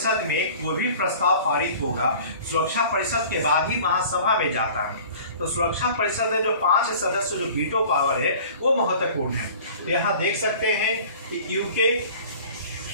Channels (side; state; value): both; inverted; correlation -0.45